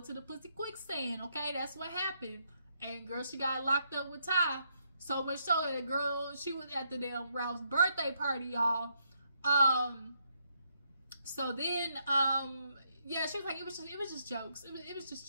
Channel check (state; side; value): inverted; both; correlation -0.76